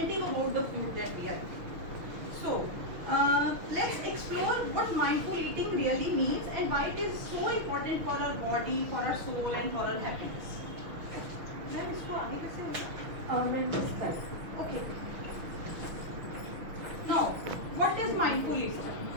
about the food that we are eating. So, let's explore what mindful eating really means and why it is so important for our body, for our soul and for our happiness. Ma'am, इसको आगे कैसे होगा? Okay. Now, what is mindful eating?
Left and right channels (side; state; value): left; late; 6.3 ms